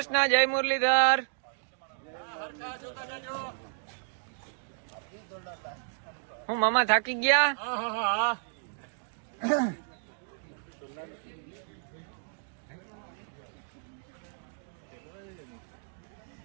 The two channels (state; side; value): silent; left; digital silence